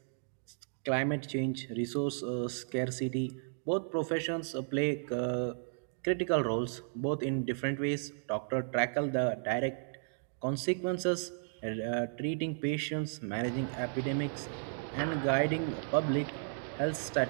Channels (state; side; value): silent; left; digital silence